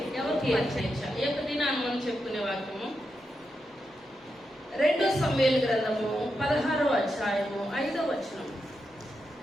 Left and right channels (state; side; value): normal; both; correlation 0.86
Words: ఎవరికి అక్షయించాలి? ఏ దినాన్ని మనం చెప్పుకునే వాక్యము 2 సమూయేలు గ్రంథము 16వ అధ్యాయము 5వ వచనం.